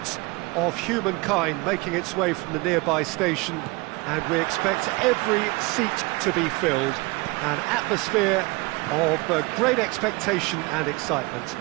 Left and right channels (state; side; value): quieter; left; 25.0 dB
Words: of humankind making its way from the nearby station, and we expect every seat to be filled. An atmosphere of great expectation and excitement.